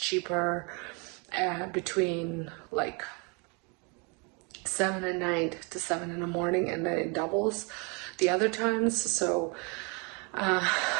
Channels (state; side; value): quieter; left; 32.4 dB